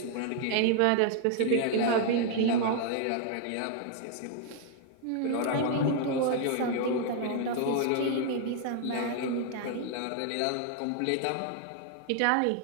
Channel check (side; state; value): both; different; correlation 0.00